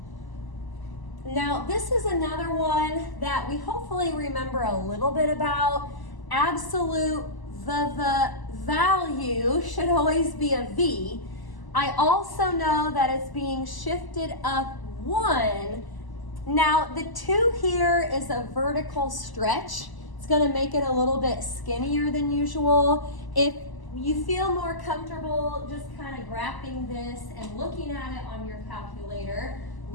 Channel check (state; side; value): late; right; 1.0 ms